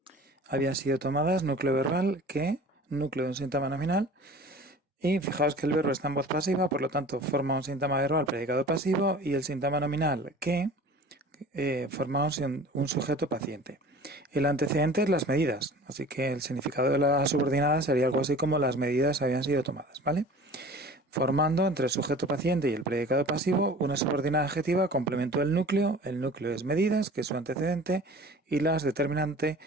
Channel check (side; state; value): both; normal; correlation 0.43